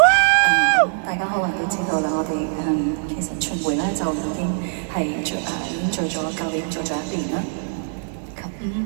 大家可能都知道啦，我哋其實巡迴咧就已經係做咗舊年做咗1年啦。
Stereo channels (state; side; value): silent; left; digital silence